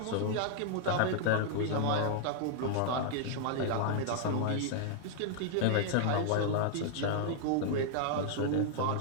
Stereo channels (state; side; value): different; both; correlation -0.01